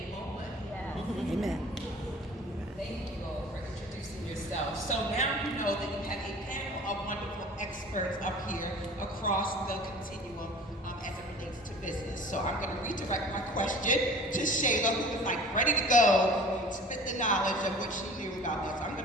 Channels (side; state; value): both; normal; correlation 0.45